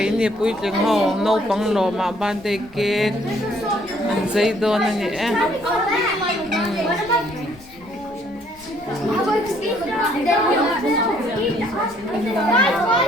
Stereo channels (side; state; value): left; noise; rumble, 24 dB below the sound